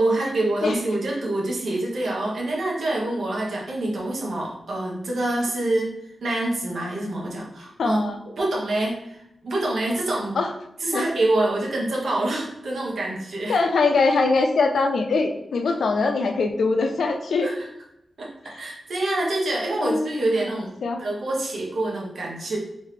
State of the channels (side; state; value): both; normal; correlation 0.87